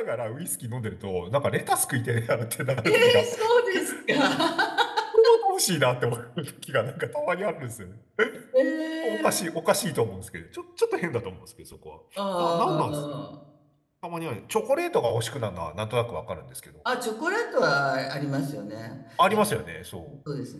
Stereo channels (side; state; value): both; identical; correlation 1.00